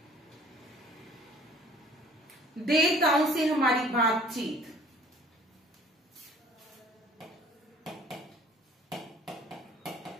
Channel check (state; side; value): normal; both; correlation 0.52